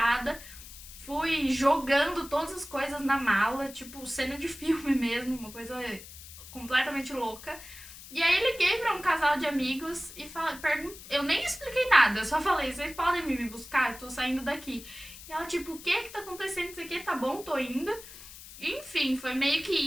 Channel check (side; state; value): left; noise; hiss, 16 dB below the sound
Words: Fui jogando todas as coisas na mala, tipo cena de filme mesmo, uma coisa completamente louca. E aí liguei pra um casal de amigos e eu nem expliquei nada, eu só falei, vocês podem me buscar? Eu tô saindo daqui. E ela tipo, o que tá acontecendo? Isso aqui tá bom, tô indo. Enfim, foi meio que